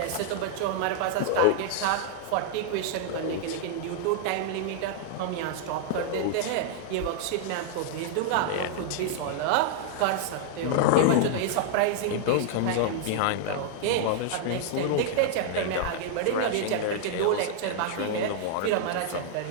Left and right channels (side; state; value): both; different; correlation -0.01